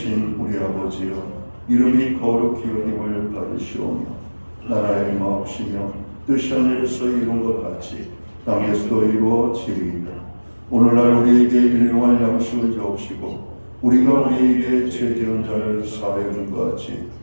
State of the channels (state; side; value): inverted; both; correlation -1.00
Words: 우리 아버지여, 이름이 거룩히 여김을 받으시오며 나라의 마옵시며 뜻이 하늘에서 이룬 것 같이 땅에서도 이루어지리이다. 오늘날 우리에게 일용할 양식을 주옵시고 우리가 우리에게 죄 지은 자를 사하여 준 것 같이